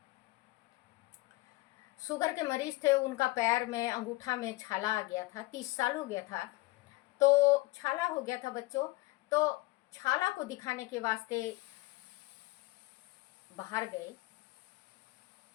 शुगर के मरीज थे। उनका पैर में अंगूठा में छाला आ गया था, 30 साल हो गया था। तो छाला हो गया था बच्चों, तो छाला को दिखाने के वास्ते बाहर गए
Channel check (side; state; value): right; quieter; 20.1 dB